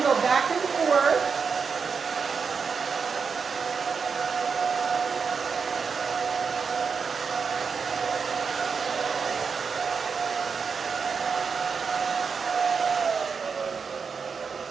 go back and forth.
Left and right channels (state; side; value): quieter; left; 5.7 dB